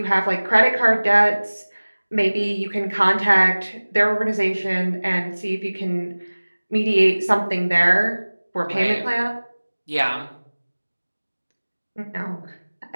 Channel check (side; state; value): both; inverted; correlation -1.00